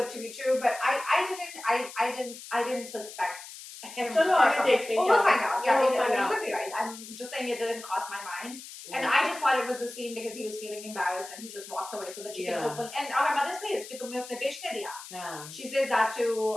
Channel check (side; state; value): left; noise; hiss, 14 dB below the sound